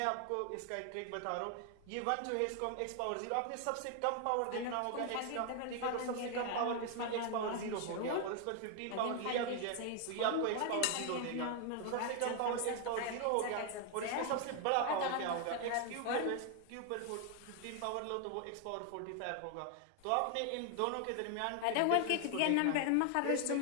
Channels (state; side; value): different; both; correlation 0.00